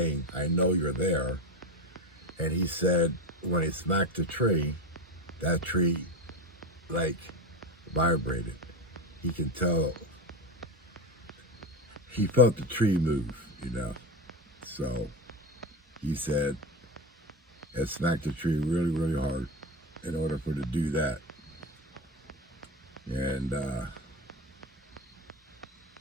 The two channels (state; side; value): normal; both; correlation 0.20